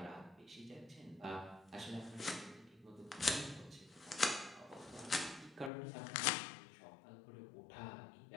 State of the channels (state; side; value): drops out; right; at 5.7 s